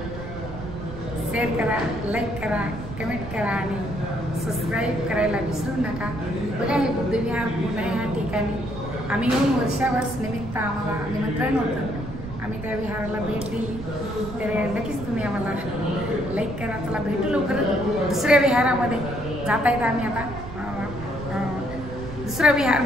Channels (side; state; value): right; noise; rumble, 10 dB below the sound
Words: शेअर करा, लाईक करा, कमेंट करा आणि सबस्क्राईब करायला विसरू नका. बघा हे बुद्धविहार पुणे ह्या ठिकाणी आम्ही येऊन वर्षावर्ष निमित्त आम्हाला निमंत्रण होतं. आम्ही त्या विहाराला भेट दिली. तर नक्कीच तुम्ही आम्हाला लाईक करा. चला भेटू लवकरच दुसऱ्या विहारामध्ये जाता येतं. आम्ही आता दुसरा विहार